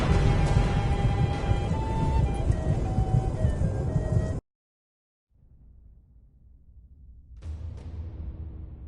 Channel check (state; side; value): identical; both; correlation 1.00